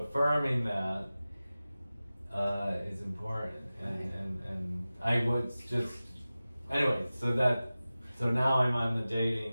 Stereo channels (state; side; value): inverted; both; correlation -0.96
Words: that is important, and I would just anyway. So now I'm on the